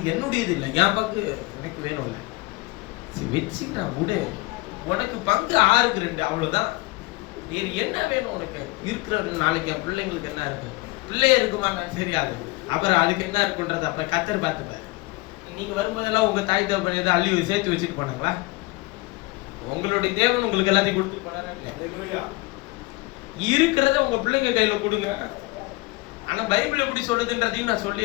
என்னுடையது இல்லை, என் பங்கு எனக்கு வேணும் இல்லை. சரி வச்சுக்கிட்டான் விடு. உனக்கு பங்கு 6க்கு 2, அவ்வளவுதான். வேறு என்ன வேணும் உனக்கு? இருக்கிற நாளைக்கு என் பிள்ளைங்களுக்கு என்ன இருக்கும்? பிள்ளை இருக்குமான்னு தெரியாது. அப்புறம் அதுக்கு என்ன இருக்குன்றது அப்புறம் கத்தர் பார்த்துப்பாரு. நீங்க வரும்போதெல்லாம் உங்க தாய் தகப்பன் ஏதோ அள்ளி சேர்த்து வச்சுட்டு போனாங்களா? உங்களுடைய தேவன் உங்களுக்கு எல்லாத்தையும் கொடுத்துட்டு போனாரா? இருக்கிறத உங்க பிள்ளைங்க கையில கொடுங்க. ஆனா பைபிள் எப்படி சொல்லுதுன்றதையும் நான்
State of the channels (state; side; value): quieter; right; 22.5 dB